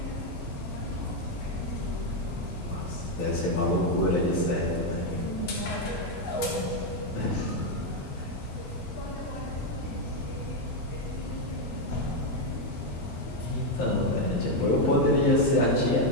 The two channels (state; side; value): normal; both; correlation 0.04